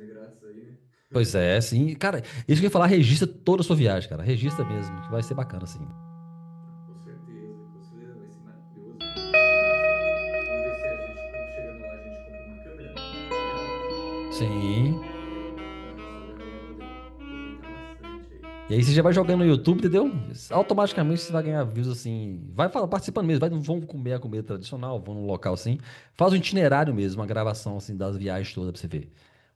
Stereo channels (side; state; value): both; identical; correlation 1.00